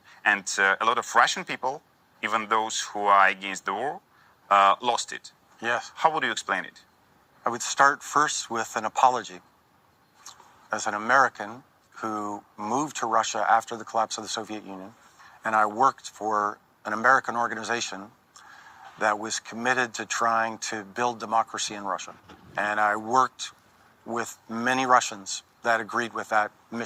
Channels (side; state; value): both; identical; correlation 1.00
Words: And a lot of Russian people, even those who are against the war, lost it. Yes. How would you explain it? I would start first with an apology. As an American who moved to Russia after the collapse of the Soviet Union, and I worked for an American organization that was committed to trying to build democracy in Russia. And I worked with many Russians that agreed with that